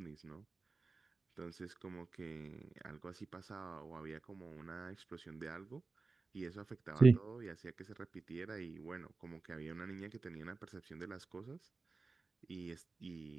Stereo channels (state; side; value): quieter; left; 4.0 dB